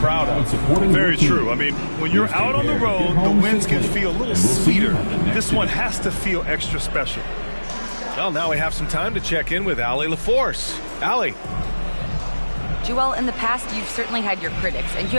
of. Very true. I mean, when you're out on the road, the wins can feel a little sweeter. This one has to feel extra special. Well, now we have some time to check in with Allie LaForce. Allie. Joel, in the past, you've certainly had your critics, and you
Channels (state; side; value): inverted; both; correlation -1.00